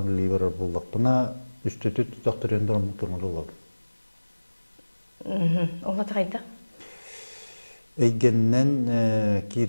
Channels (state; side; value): inverted; both; correlation -1.00